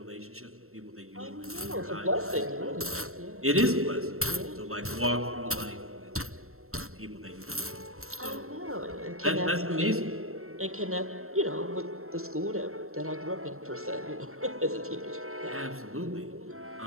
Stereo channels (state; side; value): late; left; 0.63 ms